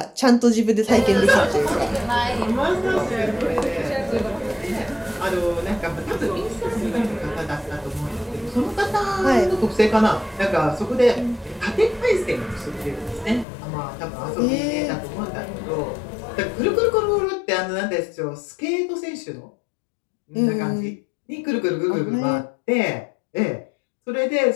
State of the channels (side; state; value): right; drops out; at 13.5 s